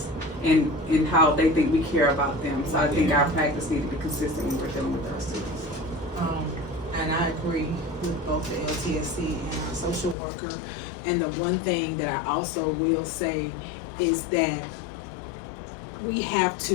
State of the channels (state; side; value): drops out; right; at 10.2 s